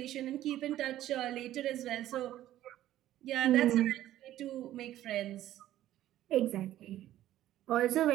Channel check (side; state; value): left; quieter; 13.4 dB